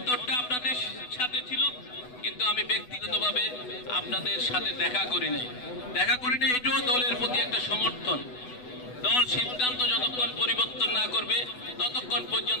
আপনাদের সাথে ছিল, কিন্তু আমি ব্যক্তিগতভাবে আপনাদের সাথে দেখা করি নাই। এটাও দলের প্রতি একটা সমর্থন। দল সিদ্ধান্ত যতক্ষণ পরিবর্তন না করবে ততক্ষণ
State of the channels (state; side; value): late; right; 8.0 ms